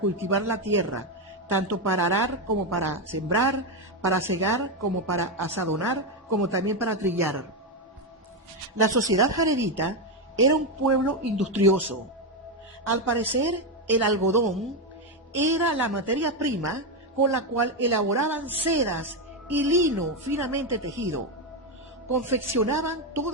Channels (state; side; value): normal; both; correlation 0.08